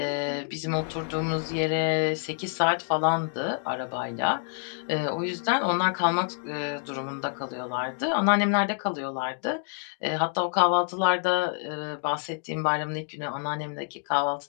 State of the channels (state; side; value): silent; right; 60 dB below the other